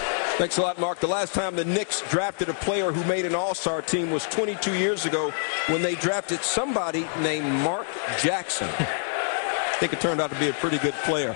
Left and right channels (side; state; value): right; silent; digital silence